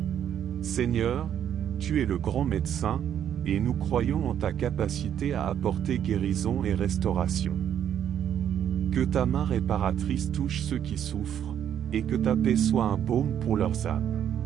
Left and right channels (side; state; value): left; quieter; 9.6 dB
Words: Seigneur, tu es le grand médecin, et nous croyons en ta capacité à apporter guérison et restauration. Que ta main réparatrice touche ceux qui souffrent, et que ta paix soit un baume pour leurs âmes.